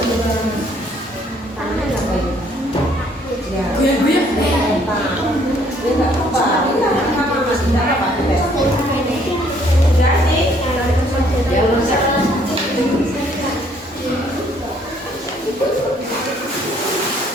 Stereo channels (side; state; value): both; normal; correlation 0.64